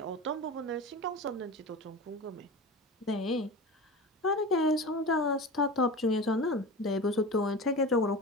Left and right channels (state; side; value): normal; both; correlation 0.30